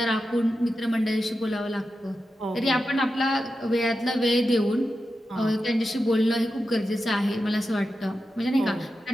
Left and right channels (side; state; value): both; normal; correlation 0.90